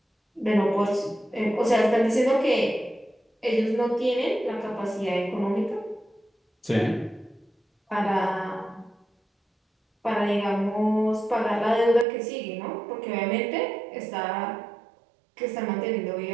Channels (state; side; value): drops out; left; at 12.1 s